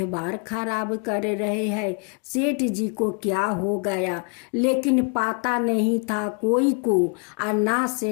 खराब कर रहे हैं, सेठ जी को क्या हो गया। लेकिन पता नहीं था कोई को और ना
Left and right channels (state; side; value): quieter; right; 38.6 dB